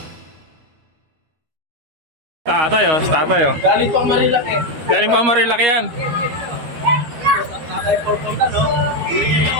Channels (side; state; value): left; late; 13 ms